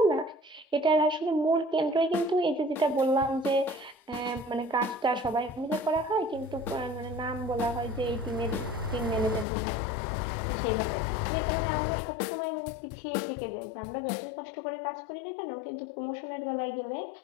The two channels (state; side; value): drops out; right; at 9.5 s